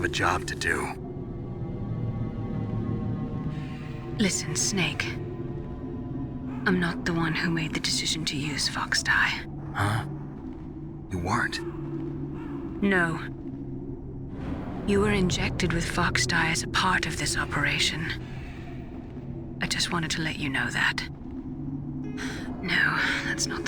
a job to do. Listen, Snake. I'm not the one who made the decision to use Fox Die. Huh? You weren't? No. You were injected with Fox Die as a part of this operation. I just wanted to let you know that. No, that's not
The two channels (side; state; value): both; identical; correlation 1.00